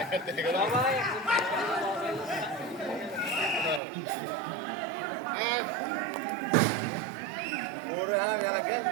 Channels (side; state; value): left; drops out; at 3.8 s